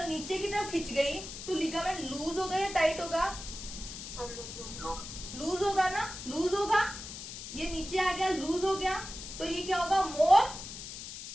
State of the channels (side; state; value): left; noise; hiss, 10 dB below the sound